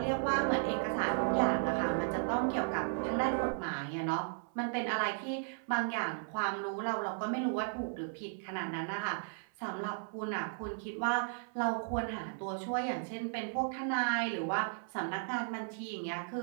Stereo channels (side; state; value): left; silent; 54 dB below the other